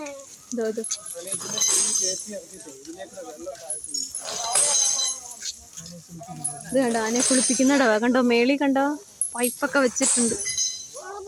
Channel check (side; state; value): both; identical; correlation 1.00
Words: ഇത് കണ്ടോ, ആനയെ കുളിപ്പിക്കുന്നുണ്ടോ? കണ്ടോ, മേളി കണ്ടോ, പൈപ്പൊക്കെ വെച്ചിട്ടുണ്ട്.